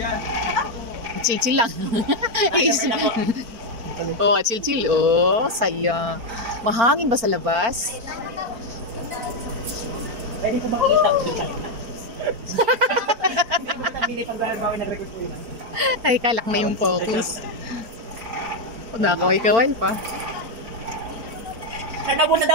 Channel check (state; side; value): late; left; 4.4 ms